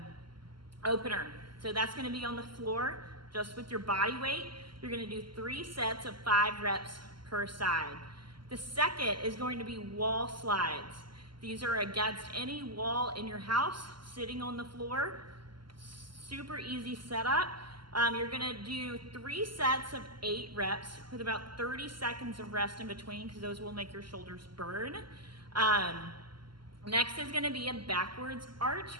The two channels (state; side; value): late; left; 0.72 ms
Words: opener. So that's gonna be on the floor, just with your body weight. You're gonna do 3 sets of 5 reps per side. The second is going to be wall slides. These are against any wall in your house, sitting on the floor. Super easy setup. You're gonna do 3 sets of 8 reps with about 30 seconds of rest in between, because those will make your shoulders burn. Next is gonna be a backwards arch